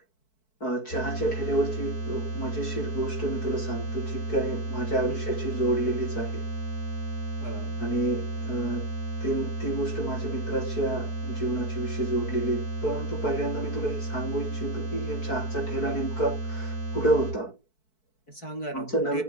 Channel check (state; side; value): late; right; 4.6 ms